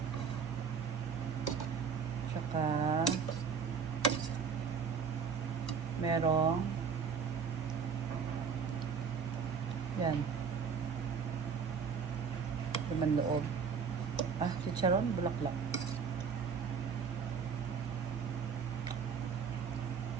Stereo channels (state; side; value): quieter; left; 6.1 dB